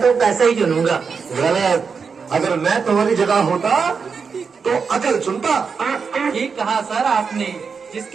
तो पैसे ही चुनूंगा। गलत। अगर मैं तुम्हारी जगह होता तो अकल चुनता। ठीक कहा सर आपने।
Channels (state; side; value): quieter; left; 5.6 dB